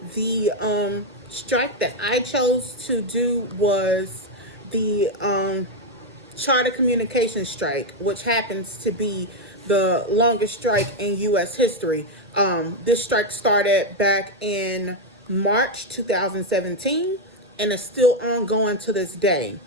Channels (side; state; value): both; normal; correlation 0.04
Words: The strike that I chose to do was the Charter Communications strike, which happens to be the longest strike in U.S. history. This strike started back in March 2017 and is still ongoing to this day.